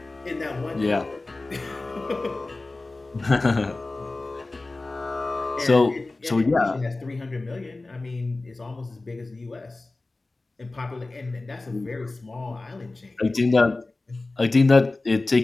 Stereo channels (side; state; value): right; quieter; 3.2 dB